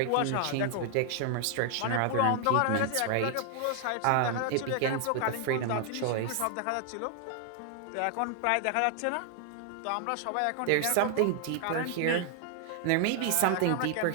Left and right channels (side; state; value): both; different; correlation 0.00